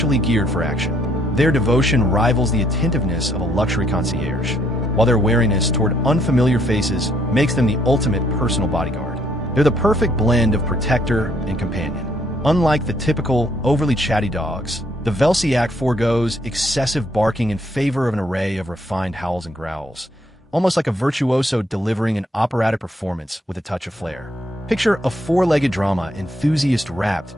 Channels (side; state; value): both; normal; correlation 0.69